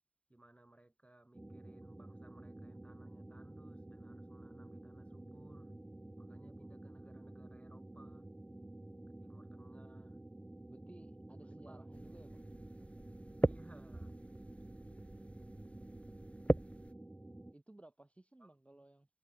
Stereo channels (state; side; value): late; right; 0.063 ms